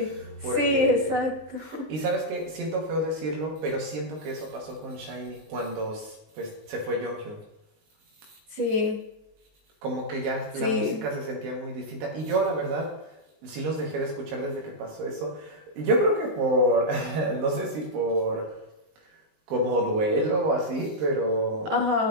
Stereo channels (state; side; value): late; left; 19 ms